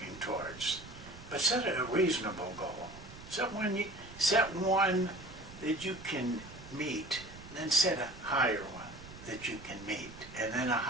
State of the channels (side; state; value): right; noise; rumble, 16 dB below the sound